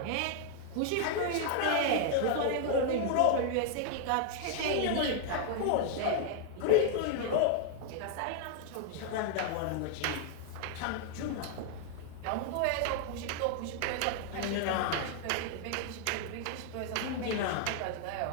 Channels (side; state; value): both; different; correlation 0.00